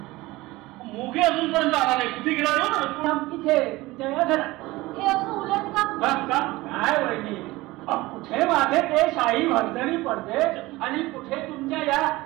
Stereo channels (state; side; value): quieter; left; 19.8 dB